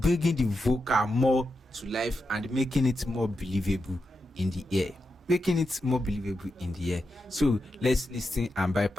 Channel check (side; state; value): both; normal; correlation 0.87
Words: the vocal more to life and making it more believable in the ear. So let's listen and